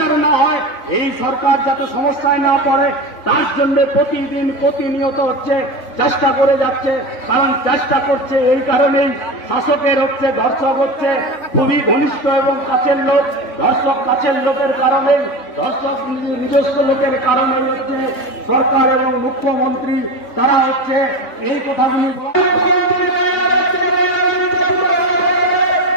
না হয়, এই সরকার যাতে সমস্যায় না পড়ে, তার জন্য প্রতিদিন প্রতিনিয়ত হচ্ছে চেষ্টা করে যাচ্ছে। কারণ চেষ্টা করছে এই কারণেই, শাসকের হচ্ছে ধর্ষক হচ্ছে খুবই ঘনিষ্ঠ এবং কাছের লোক, ধর্ষক কাছের লোকের কারণেই, ধর্ষক নিজস্ব লোকের কারণেই হচ্ছে সরকার এবং মুখ্যমন্ত্রী তারা হচ্ছে এই কথাগুলি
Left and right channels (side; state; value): right; late; 3.5 ms